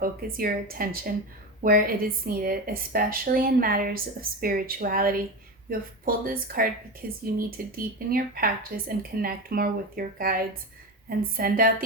your attention where it is needed, especially in matters of spirituality. You have pulled this card because you need to deepen your practice and connect more with your guides and send out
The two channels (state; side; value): normal; both; correlation 0.21